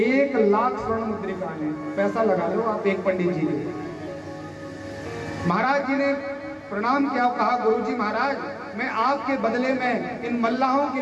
लाख स्वर्ण मुद्रिकाएं हैं। पैसा लगा लो आप एक पंडित जी ने। महाराज जी ने प्रणाम किया, कहा गुरुजी महाराज मैं आपके बदले में इन मल्लाहों के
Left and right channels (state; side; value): identical; both; correlation 1.00